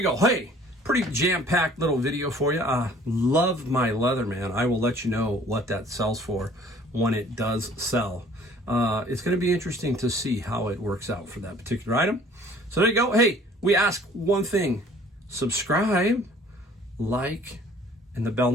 go. Hey, pretty jam-packed little video for you. Love my Leatherman. I will let you know what that sells for when it does sell. It's going to be interesting to see how it works out for that particular item. So there you go. Hey, we ask one thing. Subscribe, like, and the bell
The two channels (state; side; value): normal; both; correlation 0.53